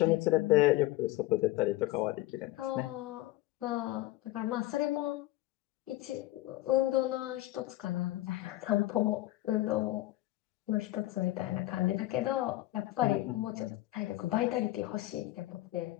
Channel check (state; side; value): quieter; right; 17.0 dB